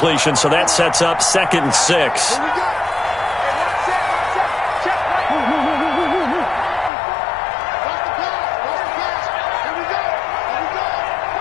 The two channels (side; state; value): right; drops out; at 6.9 s